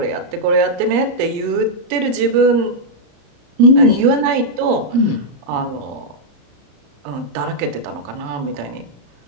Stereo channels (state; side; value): late; left; 35 ms